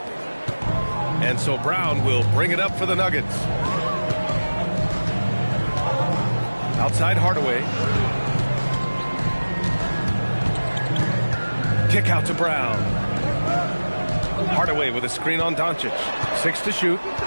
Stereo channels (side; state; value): both; inverted; correlation -1.00